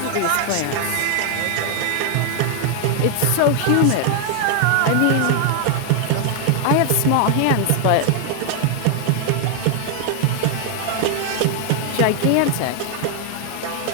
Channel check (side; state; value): both; different; correlation 0.00